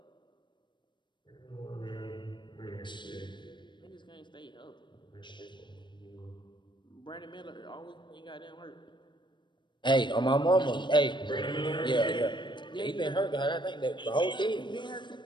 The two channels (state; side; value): late; right; 0.22 ms